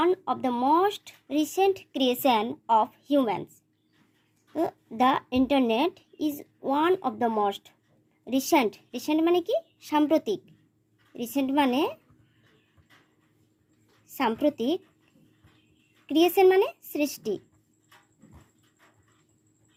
of the most recent creation of humans. The internet is one of the most recent মানে কি? সাম্প্রতিক। রিসেন্ট মানে সাম্প্রতিক, ক্রিয়েশন মানে সৃষ্টি,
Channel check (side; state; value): both; identical; correlation 1.00